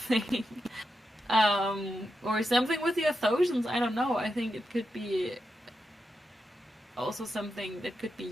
or something with the Athosians, I don't know, I think it could be also something that could be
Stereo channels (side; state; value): both; normal; correlation 0.87